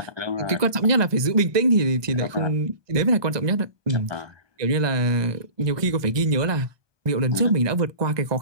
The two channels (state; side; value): late; left; 1.2 ms